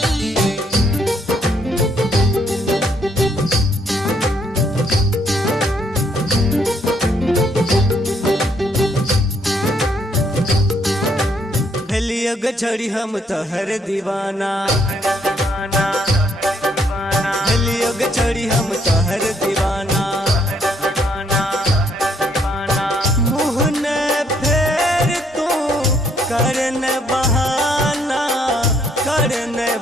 योग छड़ी हम तोहर दीवाना, योग छड़ी हम तोहर दीवाना। मुँह न फेर तू करन बहाना, करन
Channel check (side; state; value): both; normal; correlation 0.70